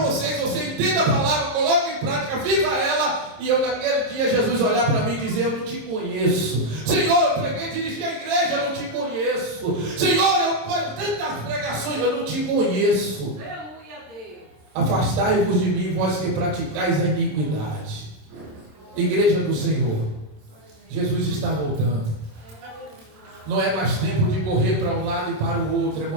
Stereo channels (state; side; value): late; left; 27 ms